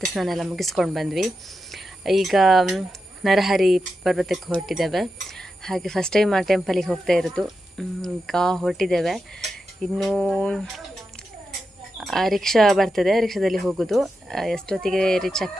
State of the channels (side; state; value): both; normal; correlation 0.89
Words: ಸ್ನಾನ ಎಲ್ಲ ಮುಗಿಸ್ಕೊಂಡು ಬಂದ್ವಿ. ಈಗ ನರಹರಿ ಪರ್ವತಕ್ಕೆ ಹೊರಟಿದ್ದೇವೆ. ಹಾಗೆ ಫಸ್ಟ್ ಟೈಮ್ ಆ ಟೆಂಪಲಿಗೆ ಹೋಗ್ತಾ ಇರೋದು. ಈಗ ಹೊರಟಿದ್ದೇವೆ. ಇನ್ನೂ ರಿಕ್ಷಾ ಬರ್ತದೆ, ರಿಕ್ಷಾದಲ್ಲಿ ಹೋಗೋದು. ಎಷ್ಟೊತ್ತಿಗೆ ರೀಚ್